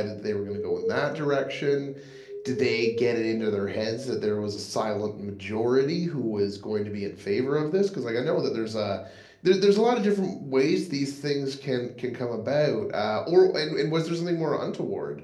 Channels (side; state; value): both; identical; correlation 1.00